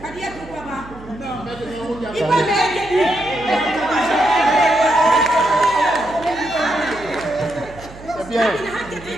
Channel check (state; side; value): noise; right; hum, 18 dB below the sound